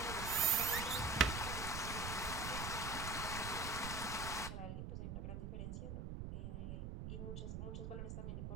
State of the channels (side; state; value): right; noise; rumble, 5 dB below the sound